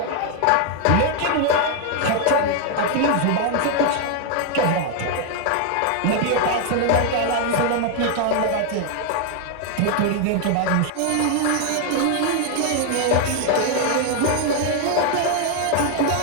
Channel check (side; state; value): both; different; correlation 0.00